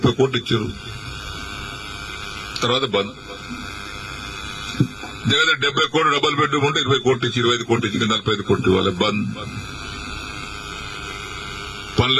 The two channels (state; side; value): identical; both; correlation 1.00